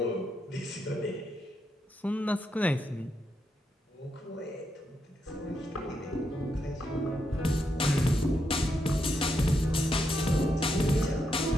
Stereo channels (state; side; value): normal; both; correlation 0.82